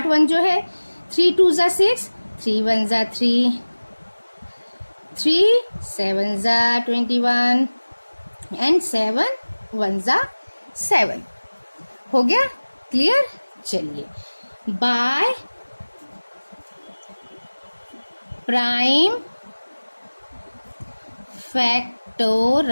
1 जो है। 3 2 ज़ा 6, 3 1 ज़ा 3, 3 7 ज़ा 21 एंड 7 1 ज़ा 7। हो गया क्लियर? चलिए, bye prime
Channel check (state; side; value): inverted; both; correlation -1.00